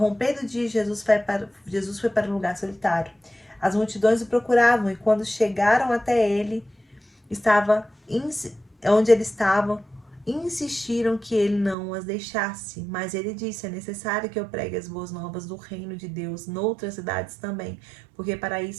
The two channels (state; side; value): drops out; left; at 11.8 s